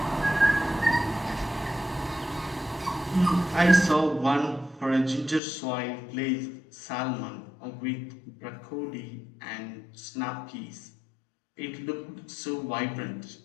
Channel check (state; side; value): drops out; right; at 5.4 s